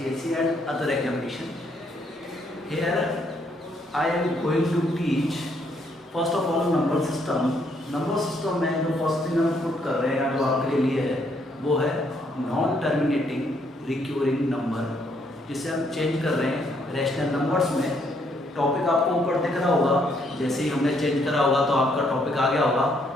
and other examination. Here, I am going to teach first of all number system. Number system में जो first thing हम put कर रहे हैं जो आपके लिए है वो है नॉन टर्मिनेटिंग रिक्यूरिंग नंबर, जिसे हम चेंज कर रहे हैं रैशनल नंबर्स में। टॉपिक आपको ऊपर दिख रहा होगा, जैसे ही हमने चेंज करा होगा तो आपका टॉपिक आ गया होगा।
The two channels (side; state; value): both; normal; correlation 0.71